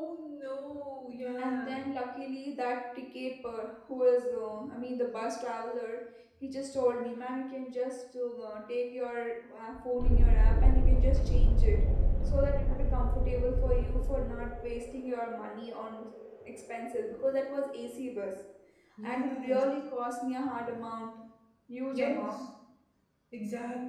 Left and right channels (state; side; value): identical; both; correlation 1.00